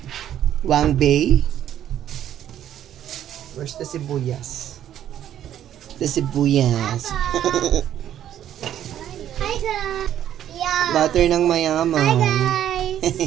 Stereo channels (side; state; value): left; quieter; 11.0 dB